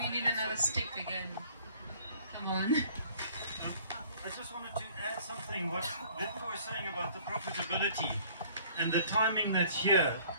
need another stick again? Come on. I just wanted to add something. What Wiebke was saying about the profitability and the timing that's here,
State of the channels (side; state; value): both; inverted; correlation -0.55